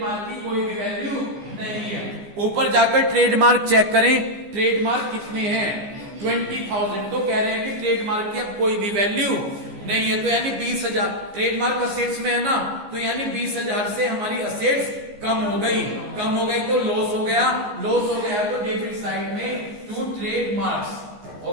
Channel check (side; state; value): left; late; 14 ms